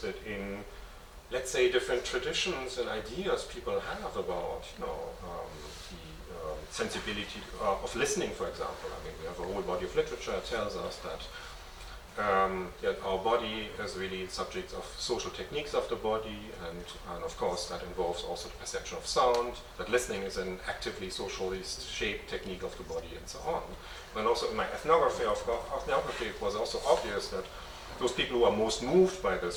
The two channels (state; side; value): identical; both; correlation 1.00